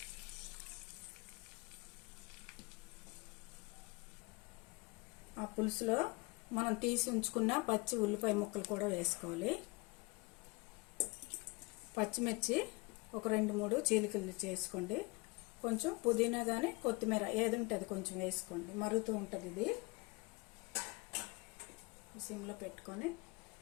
ఆ పులుసులో మనం తీసి ఉంచుకున్న పచ్చి ఉల్లిపాయ ముక్కలు కూడా వేసుకోవాలి. పచ్చిమిర్చి ఒక 2-3 చీలికలు చేసుకోండి. కొంచెం పుదీనా కానీ కొత్తిమీర ఏది ఉంటుంది కొంచెం వేసుకోండి. మరుగుతూ ఉంటుంది. ఇది సిమ్లో పెట్టుకొని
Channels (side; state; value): right; quieter; 25.9 dB